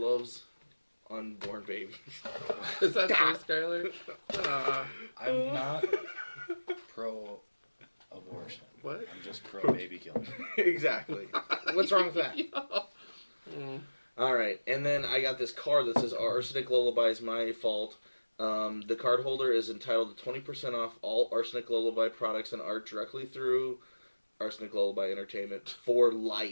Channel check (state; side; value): inverted; both; correlation -1.00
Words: unborn babies. Is that true, Skylar? I'm not pro-abortion. What? I'm just pro-baby killing. Exactly. What's wrong with that? All right. And then I got this card that says Arsenic Lullaby is my fault. The card holder is entitled to 20% off all Arsenic Lullaby products and art directly through Arsenic Lullaby Entertainment for